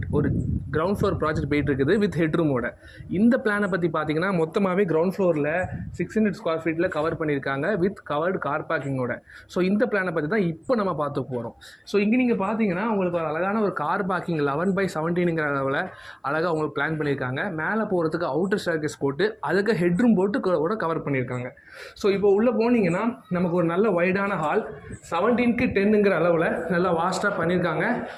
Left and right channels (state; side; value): identical; both; correlation 1.00